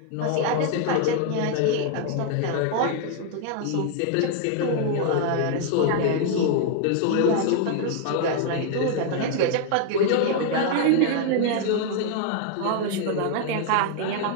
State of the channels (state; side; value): different; both; correlation 0.00